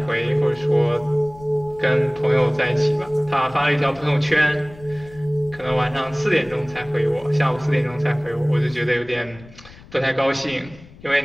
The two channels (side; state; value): left; noise; rumble, 21 dB below the sound